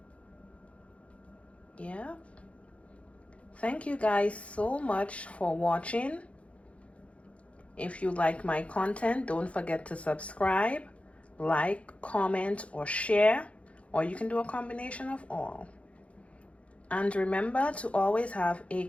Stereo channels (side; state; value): right; late; 0.063 ms